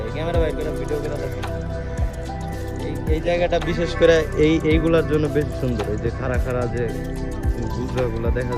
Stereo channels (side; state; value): both; identical; correlation 1.00